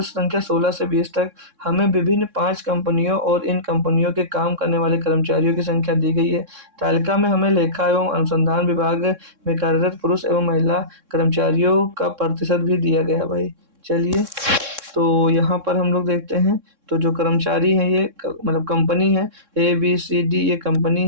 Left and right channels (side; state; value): left; late; 3.6 ms